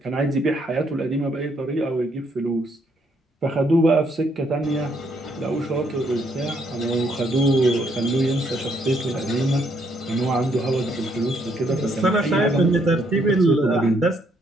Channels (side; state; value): both; normal; correlation 0.71